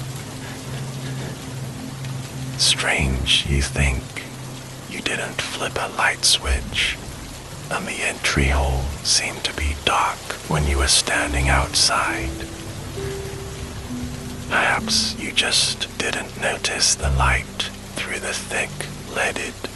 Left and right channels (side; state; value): both; identical; correlation 1.00